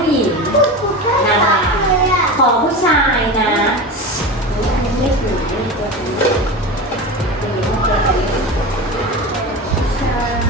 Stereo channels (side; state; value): both; normal; correlation 0.27